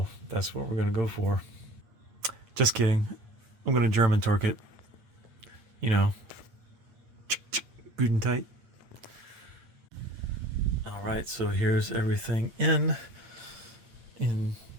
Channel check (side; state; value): left; late; 9.0 ms